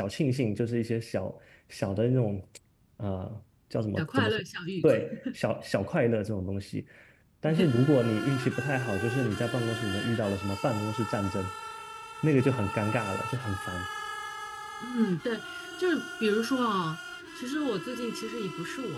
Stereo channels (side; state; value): both; identical; correlation 1.00